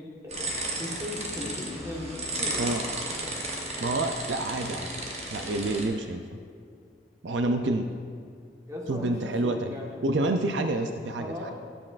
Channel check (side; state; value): both; normal; correlation 0.36